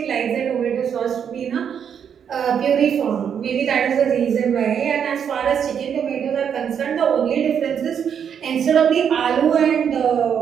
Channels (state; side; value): quieter; left; 7.9 dB